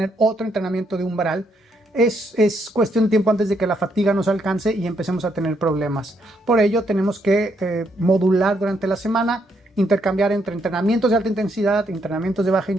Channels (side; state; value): both; normal; correlation 0.75